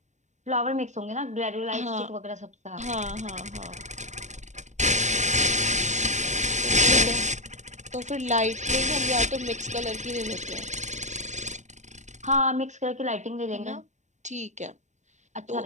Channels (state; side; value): late; left; 0.34 ms